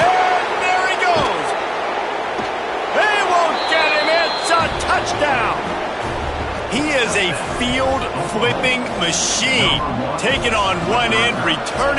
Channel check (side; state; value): both; identical; correlation 1.00